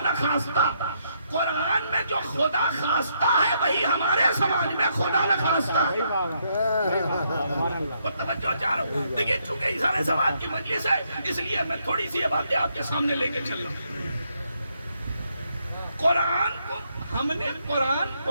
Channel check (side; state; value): both; inverted; correlation -0.75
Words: قرآن میں جو خدا خواستہ ہے وہی ہمارے سماج میں خدا نخواستہ ہے۔ توجہ چاہ رہا ہوں، دیکھیے چونکہ اظہار سواد کی مجلس ہے اس لیے میں تھوڑی سی یہ باتیں آپ کے سامنے لے کے چل رہا ہوں۔ قرآن کو ہم نے